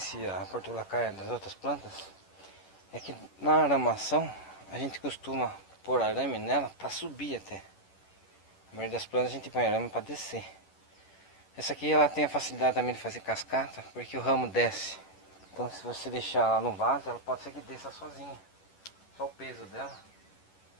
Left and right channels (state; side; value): late; right; 11 ms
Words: a portulacaia das outras plantas é que na aramação a gente costuma pôr arame nela para subir até. A maioria das plantas a gente põe arame para descer. Essa aqui ela tem a facilidade também de fazer cascata, porque o ramo desce. Então se você deixar ela no vaso, ela pode ser que desça sozinha. Só o peso dela.